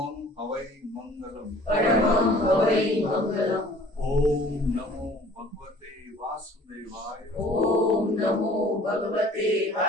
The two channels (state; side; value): normal; both; correlation 0.51